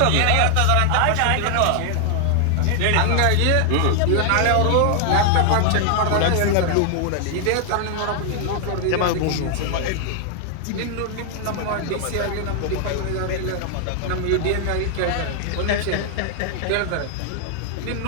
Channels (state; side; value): different; both; correlation 0.00